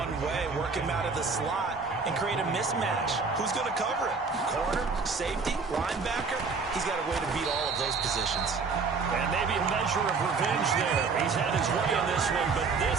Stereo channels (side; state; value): left; quieter; 4.7 dB